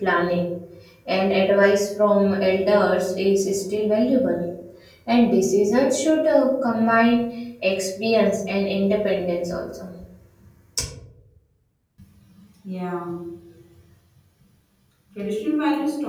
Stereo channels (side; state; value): both; identical; correlation 1.00